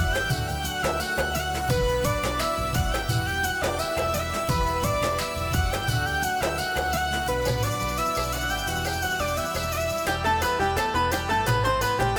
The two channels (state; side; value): identical; both; correlation 1.00